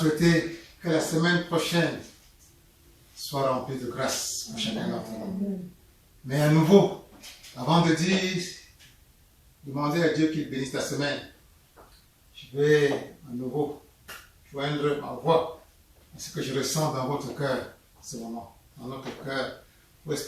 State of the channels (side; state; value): both; identical; correlation 1.00